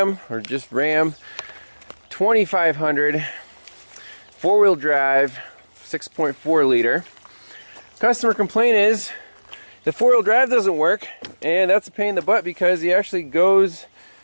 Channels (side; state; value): both; inverted; correlation -1.00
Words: or just Ram 2500 four-wheel drive 6.4 liter. Customer complaint is the four-wheel drive doesn't work, and that's a pain in the butt because he actually goes